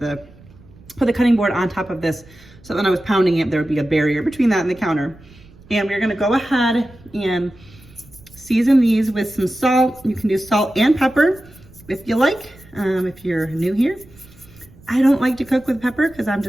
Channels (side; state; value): right; noise; rumble, 24 dB below the sound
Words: put the cutting board on top of this, so when I was pounding it, there would be a barrier between that and the counter. And we're gonna go ahead and season these with some salt. You can do salt and pepper if you like, if you're new here. I don't like to cook with pepper because I'm